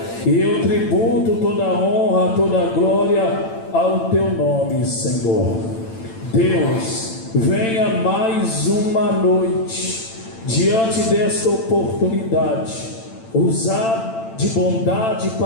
E eu tributo toda a honra, toda a glória ao teu nome, Senhor. Deus, venha mais uma noite diante desta oportunidade, usar de bondade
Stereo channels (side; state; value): right; late; 8.9 ms